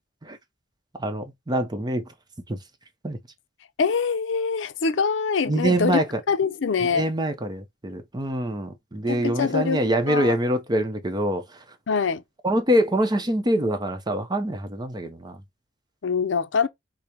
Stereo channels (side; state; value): both; normal; correlation 0.30